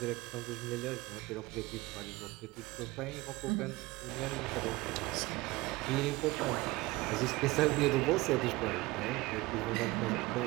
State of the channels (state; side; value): quieter; left; 20.9 dB